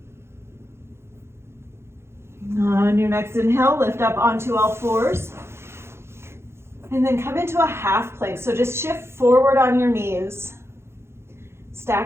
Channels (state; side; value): late; left; 0.12 ms